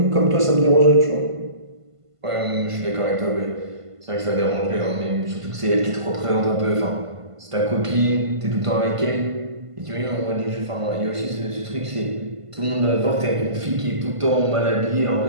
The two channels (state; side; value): late; left; 1.5 ms